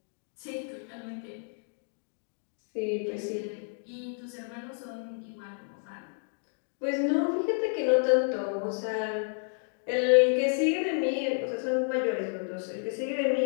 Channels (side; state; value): right; silent; 57 dB below the other